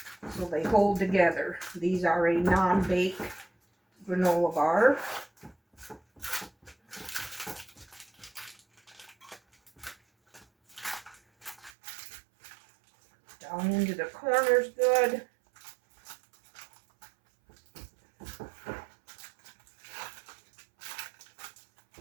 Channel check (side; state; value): left; drops out; at 11.7 s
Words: so they hold together. These are a non-bake granola bar. Down into the corners good.